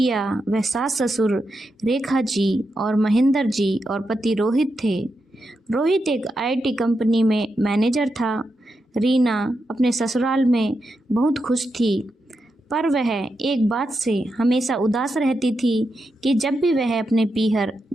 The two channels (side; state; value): both; normal; correlation 0.86